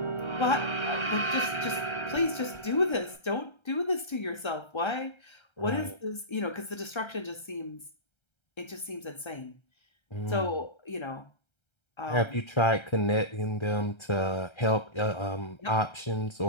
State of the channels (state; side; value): late; right; 1.3 ms